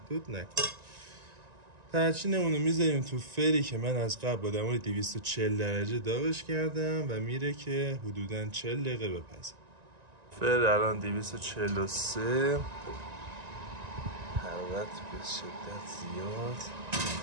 نکنید. ترچینمون رو میذاریم تو فری که من از قبل با دمای 240 درجه داغش کردم و میره که حدوداً 40 دقیقه بپزه. فر الان 243، حرارت به شدت زیاد.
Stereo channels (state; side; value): late; left; 1.9 ms